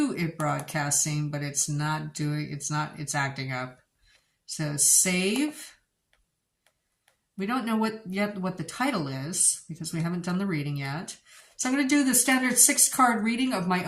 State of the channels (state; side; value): identical; both; correlation 1.00